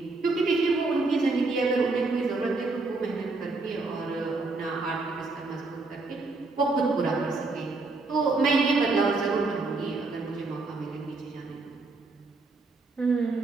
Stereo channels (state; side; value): quieter; left; 3.6 dB